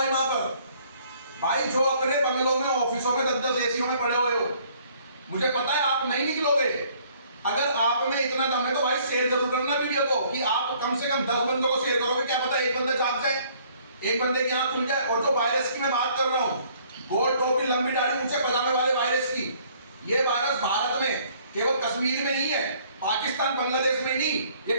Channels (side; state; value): both; inverted; correlation -0.60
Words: वहां पर। भाई जो अपने बंगलों में, ऑफिसों में 10-10 एसीओ में पड़े हुए हो, मुझे पता है आप नहीं निकलोगे। अगर आप में इतना दम है तो भाई शेयर जरूर करना वीडियो को, कि आप कम से कम 10 बंदों को शेयर करोगे, क्या पता एक बंदा जाग जाए, एक बंदे की आंख खुल जाए। और जो वायरस की मैं बात कर रहा हूँ, गोल टोपी लंबी दाढ़ी ऊंचे पजामे वाले वायरस की, ये वायरस भारत में केवल कश्मीर में नहीं है, पाकिस्तान बांग्लादेश में नहीं, ये